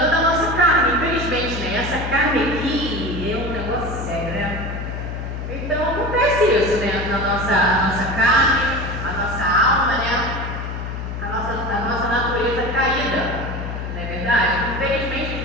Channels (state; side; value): noise; left; hum, 6 dB below the sound